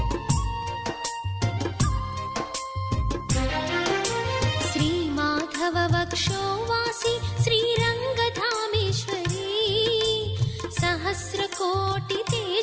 శ్రీమాధవ వక్షోవాసి శ్రీరంగధామేశ్వరీ, సహస్రకోటి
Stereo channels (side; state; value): both; identical; correlation 1.00